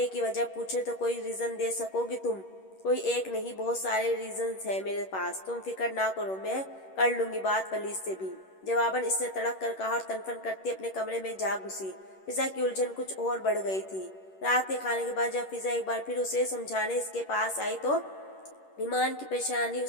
کی وجہ پوچھے تو کوئی ریزن دے سکو گی تم؟ کوئی ایک نہیں، بہت سارے ریزنز ہیں میرے پاس، تم فکر نہ کرو، میں کر لوں گی بات ولید سے بھی۔ جواباً اس نے تڑک کر کہا اور تنفن کرتی اپنے کمرے میں جا گھسی۔ فضا کی الجھن کچھ اور بڑھ گئی تھی۔ رات کے کھانے کے بعد جب فضا ایک بار پھر اسے سمجھانے اس کے پاس آئی تو ایمان کی پریشانی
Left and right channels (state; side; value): late; right; 11 ms